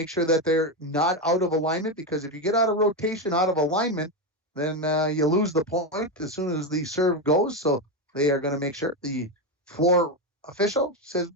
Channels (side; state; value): both; normal; correlation 0.11